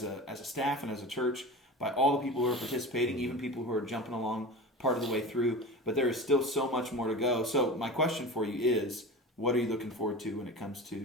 a staff and as a church, by all the people who are participating, even people who are jumping along part of the way through. But there is still so much more to go. So my question for you is, what are you looking forward to when it comes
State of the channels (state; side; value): normal; both; correlation 0.31